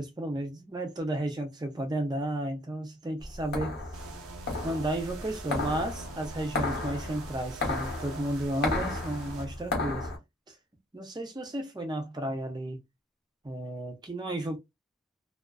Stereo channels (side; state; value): both; normal; correlation 0.62